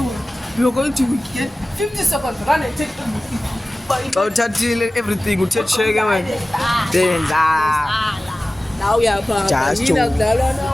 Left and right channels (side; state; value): both; normal; correlation 0.97